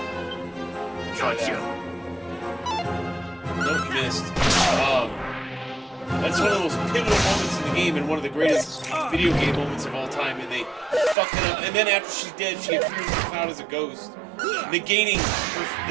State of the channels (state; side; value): drops out; left; at 11.2 s